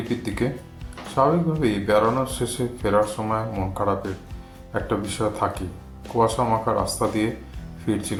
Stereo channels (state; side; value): identical; both; correlation 1.00